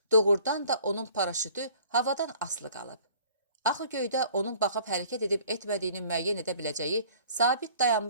doğrudan da onun paraşütü havadan asılı qalıb. Axı göydə onun baxıb hərəkət edib etmədiyini müəyyən edə biləcəyi sabit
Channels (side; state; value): both; inverted; correlation -0.52